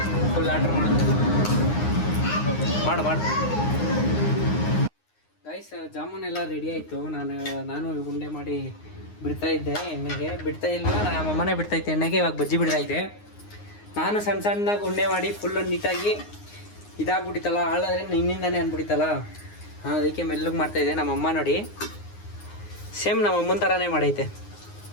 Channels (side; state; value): right; late; 9.6 ms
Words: ಫುಲ್ ಆರ್ಡ್ರ್ ಮಾಡುತ್ತಲ್ಲ. ಮಾಡು ಗೈಸ್. ಜಾಮೂನ್ ಎಲ್ಲ ರೆಡಿ ಆಯಿತು. ನಾನು ಉಂಡೆ ಮಾಡಿ ಬಿಡ್ತಾ ಇದ್ದೆ. ಎಣ್ಣೆಗೆ ಬಿಡ್ತಾ ಇಲ್ಲ, ನಮ್ಮಮ್ಮನೇ ಬಿಡ್ತಾ ಇದ್ದೆ ಎಣ್ಣೆಗೆ. ಇವಾಗ ಬಜ್ಜಿ ಬಿಡ್ತಾ ಇದ್ದೆ. ನಾನು ಸಣ್ಣದಾಗಿ ಉಂಡೆ ಮಾಡಿ ಫುಲ್ಲು ನೀಟಾಗಿ ಇದಾಗ್ಬಿಟ್ಟಿತ್ತಲ್ಲ, ಹಾಳಾದ್ರೆ ನಿನ್ನಿಂದಾನೇ ಅಂದ್ಬಿಟ್ಟಿತ್ತಲ್ಲ. ಅದಕ್ಕೆ ಮೆಲ್ಲಗೆ ಮಾಡ್ತಾಯಿದ್ದೆ. ನಮ್ಮಮ್ಮ ನೋಡಿ ಸೇಮ್ ನಮ್ಮಮ್ಮನ ಥರನೇ ಮಾಡೈತೆ.